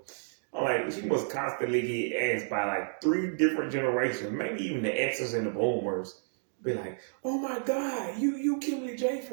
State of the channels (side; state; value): left; silent; digital silence